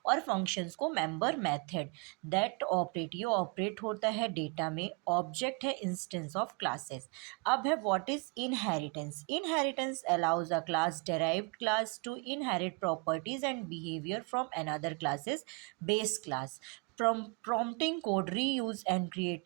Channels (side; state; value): left; quieter; 31.9 dB